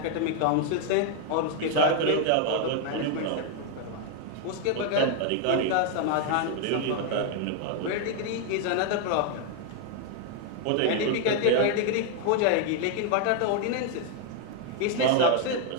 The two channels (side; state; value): both; different; correlation 0.00